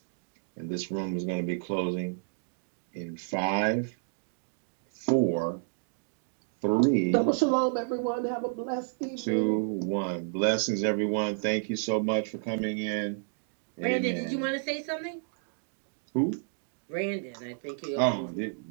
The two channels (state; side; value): silent; left; digital silence